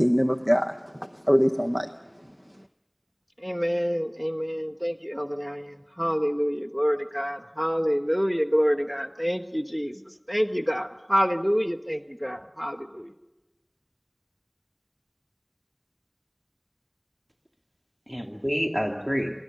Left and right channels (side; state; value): both; identical; correlation 1.00